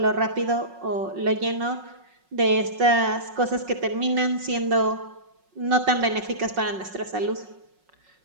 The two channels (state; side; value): late; left; 5.4 ms